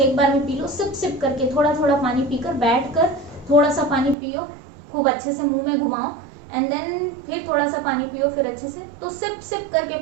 बार में पी लो, सिप सिप करके थोड़ा थोड़ा पानी पीकर बैठ कर थोड़ा सा पानी पियो, खूब अच्छे से मुंह में घुमाओ, एंड देन फिर थोड़ा सा पानी पियो, फिर अच्छे से, तो सिप सिप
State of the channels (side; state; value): left; drops out; at 4.2 s